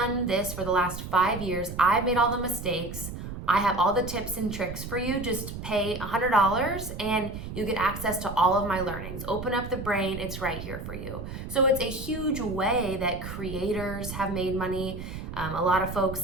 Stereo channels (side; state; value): right; noise; rumble, 8 dB below the sound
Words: this for the last 5 years. I've made all the mistakes. I have all the tips and tricks for you. Just pay $100 and you get access to all of my learnings. Open up the brain, it's right here for you. So it's a huge way that creators have made money. A lot of folks